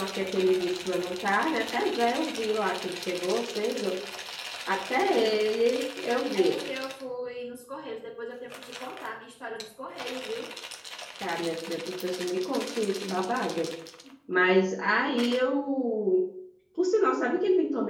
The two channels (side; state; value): both; identical; correlation 1.00